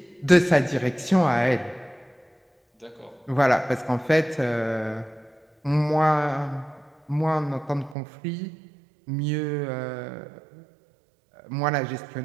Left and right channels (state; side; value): drops out; left; at 8.0 s